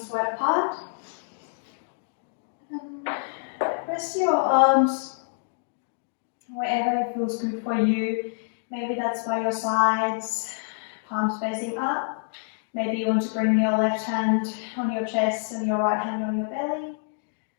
wide apart. Rest your arms wherever it feels good for you. Maybe that's by your sides, palms facing up. Maybe you want to bring your left hand on your chest and your right hand on your belly.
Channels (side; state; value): right; silent; digital silence